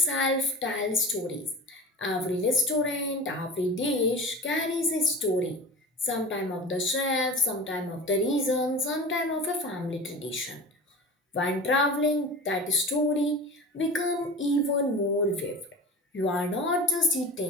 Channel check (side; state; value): both; normal; correlation 0.34